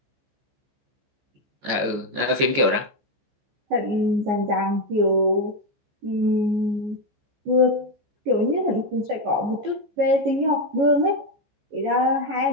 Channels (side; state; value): left; late; 14 ms